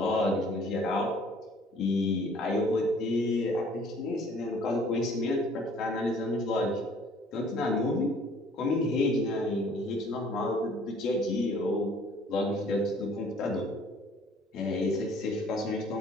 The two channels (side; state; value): both; normal; correlation 0.55